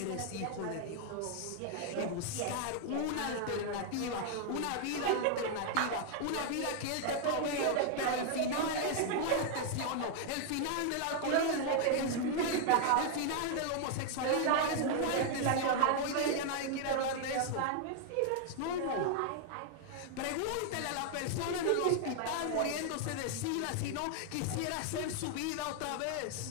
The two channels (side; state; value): both; different; correlation 0.00